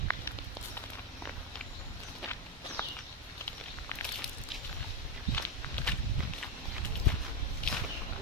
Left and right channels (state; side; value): normal; both; correlation 0.07